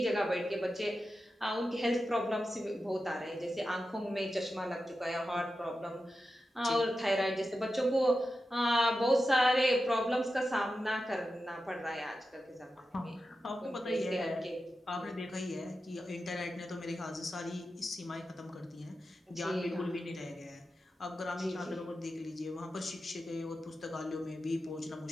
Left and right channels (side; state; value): both; normal; correlation 0.91